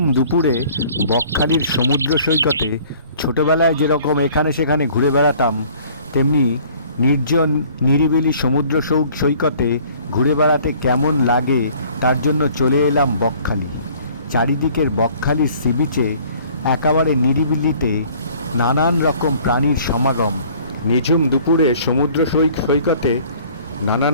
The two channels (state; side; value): inverted; both; correlation -0.54